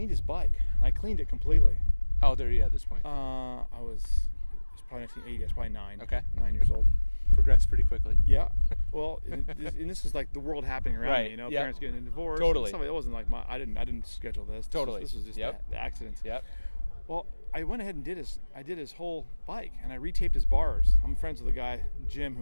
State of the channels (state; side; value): inverted; both; correlation -1.00